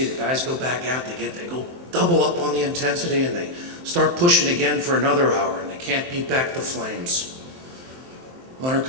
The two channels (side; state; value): left; late; 23 ms